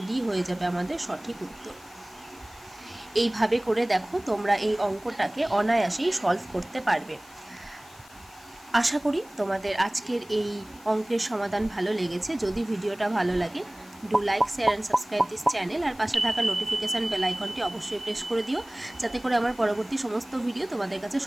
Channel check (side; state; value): left; noise; hiss, 24 dB below the sound